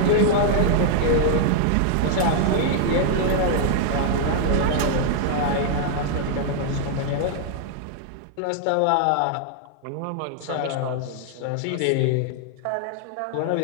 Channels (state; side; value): different; both; correlation 0.00